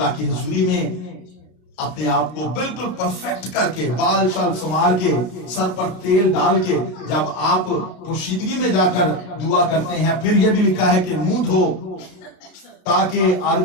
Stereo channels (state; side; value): late; right; 33 ms